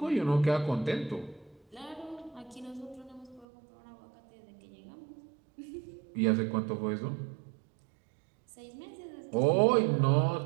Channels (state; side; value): drops out; left; at 3.5 s